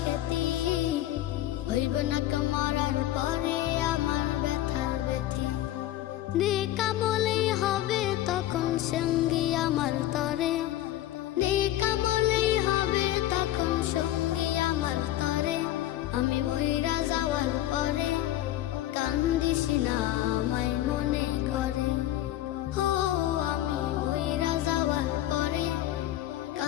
খ্যাতি, হইবে না কেউ মরার পরে আমার ব্যথার ব্যথি। নেকামলেই হবে তখন সঙ্গী আমার তরে, নেকামলেই হবে তখন সঙ্গী আমার তরে। আমি মইরা যাওয়ার পরে কান্দিস না আমায় মনে করে, ও আমি মইরা যাওয়ার পরে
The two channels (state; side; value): quieter; right; 14.1 dB